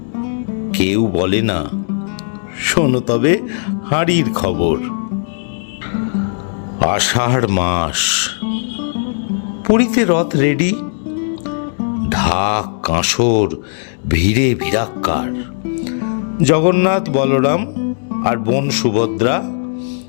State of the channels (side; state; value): right; silent; digital silence